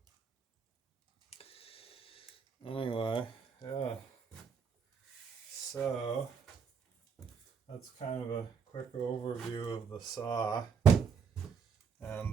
Anyway, yeah. So that's kind of a quick overview of the saw.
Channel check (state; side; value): quieter; left; 6.3 dB